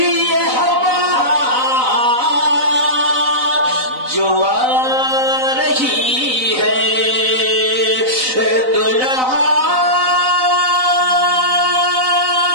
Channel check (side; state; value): left; late; 3.9 ms